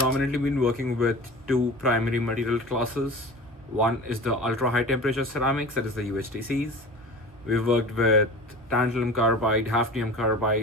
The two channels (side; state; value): both; normal; correlation 0.37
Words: been working with two primary material classes. One is the ultra high temperature ceramics, that is the UHTCs. We've worked with tantalum carbide, hafnium